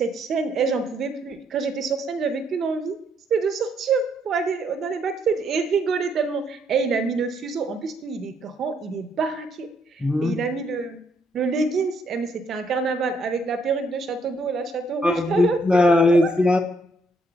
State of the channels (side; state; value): both; normal; correlation 0.72